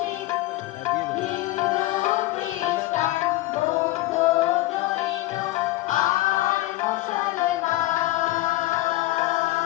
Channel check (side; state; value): right; quieter; 17.5 dB